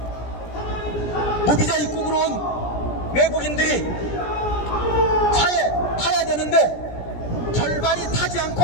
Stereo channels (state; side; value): late; right; 17 ms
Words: 무비자 입국으로 온 외국인들이 차에 타야 되는데 절반이 타지 않고